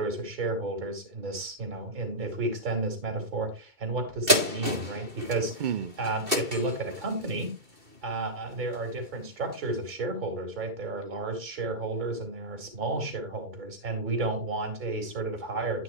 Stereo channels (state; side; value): late; left; 2.7 ms